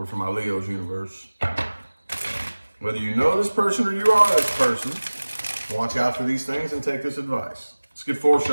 for my Leo's universe. Whether you know this person or you are this person, watch out for these things and take this advice. Let's get 4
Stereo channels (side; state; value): both; inverted; correlation -1.00